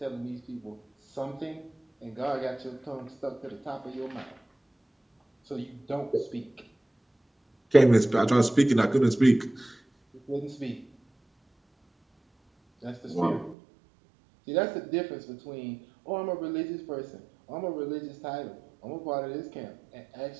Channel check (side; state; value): left; drops out; at 13.6 s